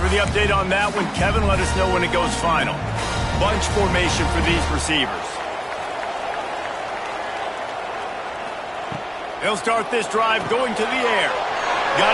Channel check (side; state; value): both; identical; correlation 1.00